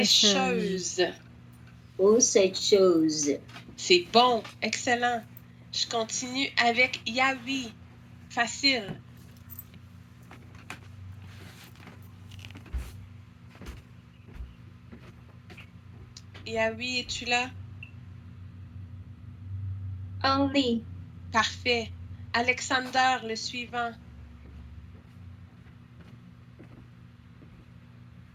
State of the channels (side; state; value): both; identical; correlation 1.00